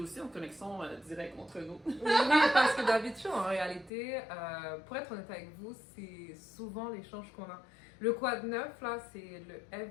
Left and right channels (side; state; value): right; drops out; at 3.9 s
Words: en connexion directe entre nous. Oui, parce que d'habitude, en réalité, pour être honnête avec vous, c'est souvent l'échange qu'on a. Le quoi de neuf, là, c'est le